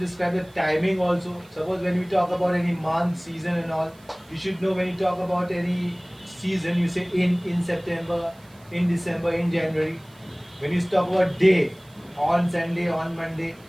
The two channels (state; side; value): noise; right; hiss, 28 dB below the sound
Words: the timing also. Suppose when we talk about any month, season and all, you should know when you talk about any season, you say in September, in December, in January. When you talk about day, on Sunday, on Monday.